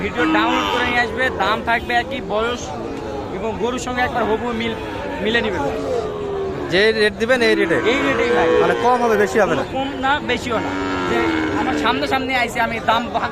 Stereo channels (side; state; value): both; identical; correlation 1.00